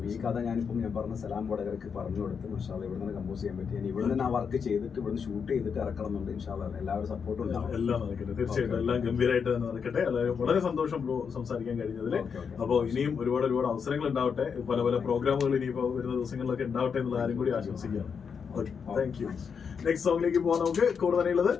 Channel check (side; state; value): right; quieter; 6.4 dB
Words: ഈ കഥ ഞാൻ പറഞ്ഞ സലാം വടകരക്ക് പറഞ്ഞു കൊടുത്ത് മാഷാ അല്ലാഹ് ഇവിടെ നിന്ന് കമ്പോസ് ചെയ്യാൻ പറ്റി. ഞാൻ ഇവിടെ നിന്ന് ആ വർക്ക് ചെയ്തിട്ട് ഇവിടുന്ന് ഷൂട്ട് ചെയ്തിട്ട് ഇറക്കണം എന്നുണ്ട്. ഇൻഷാ അല്ലാഹ് എല്ലാവരും സപ്പോർട്ടും ഉണ്ടാവും. എല്ലാം നടക്കട്ടെ, തീർച്ചയായിട്ടും എല്ലാം ഗംഭീരമായിട്ട് തന്നെ നടക്കട്ടെ. വളരെ സന്തോഷം ബ്രോ സംസാരിക്കാൻ കഴിഞ്ഞതിൽ. അപ്പോൾ ഇനിയും ഒരുപാട് അവസരങ്ങൾ ഉണ്ടാവട്ടെ, പല പ്രോഗ്രാമുകൾ ഇനിയിപ്പോ വരുന്ന ദിവസങ്ങളിലൊക്കെ ഉണ്ടാവട്ടെ എന്നുള്ള കാര്യം കൂടി ആശംസിക്കുകയാണ്. Okay, thank you. നെക്സ്റ്റ് സോങ്ങിലേക്ക് പോകാൻ നമുക്ക് കൂടുതൽ